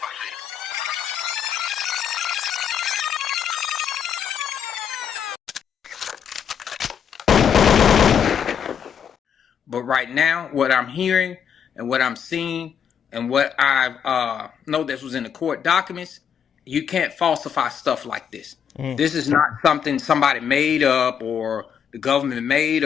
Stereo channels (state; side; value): quieter; right; 8.0 dB